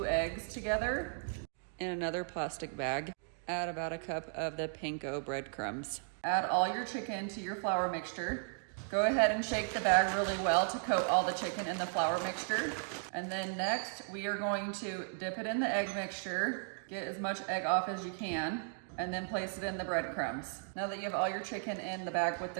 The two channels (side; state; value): left; silent; 54 dB below the other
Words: eggs together in another plastic bag. Add about a cup of the panko breadcrumbs. Add all your chicken to your flour mixture. Go ahead and shake the bag really well to coat all the chicken in the flour mixture. And then next, we are going to dip it in the egg mixture, get as much egg off as you can, and then place it in the breadcrumbs. Now that you have all your chicken in the bag with